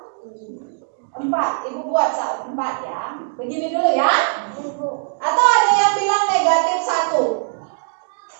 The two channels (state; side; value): silent; left; digital silence